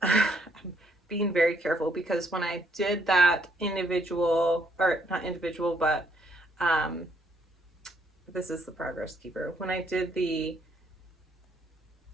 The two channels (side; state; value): both; normal; correlation 0.70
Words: being very careful, because when I did that individual, or not individual, but this is the Progress Keeper. When I did the